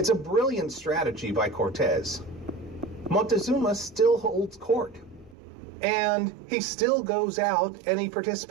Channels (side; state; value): left; drops out; at 5.4 s